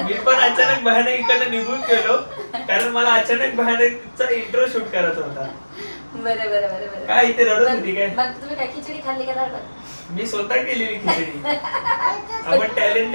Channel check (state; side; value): inverted; both; correlation -1.00